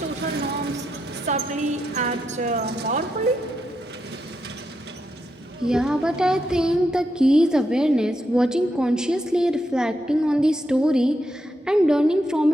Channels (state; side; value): normal; both; correlation 0.83